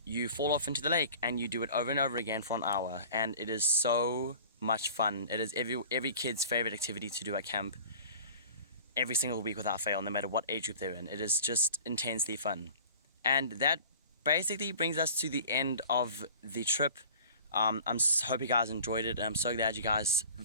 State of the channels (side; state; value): both; inverted; correlation -0.44